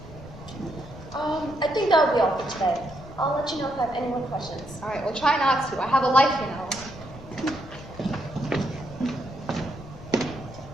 I think that will be all for today. I'll let you know if I have any more questions. All right, well, try not to. I have a life, you know.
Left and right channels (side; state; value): left; noise; rumble, 16 dB below the sound